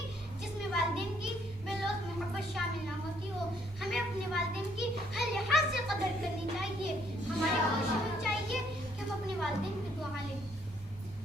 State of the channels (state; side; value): normal; both; correlation 0.67